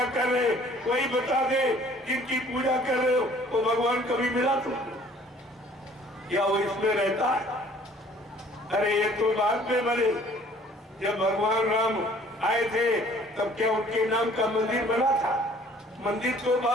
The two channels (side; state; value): both; normal; correlation 0.55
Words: कर रहे, कोई बता दे जिनकी पूजा कर रहे हो वो भगवान कभी मिला तुमको? या वो इसमें रहता है? अरे ये तो बाद में बने। जब भगवान राम आए थे तब क्या उनके नाम का मंदिर बना था? मंदिर तो